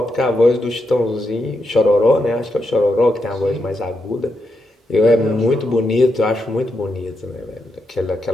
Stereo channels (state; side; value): normal; both; correlation 0.83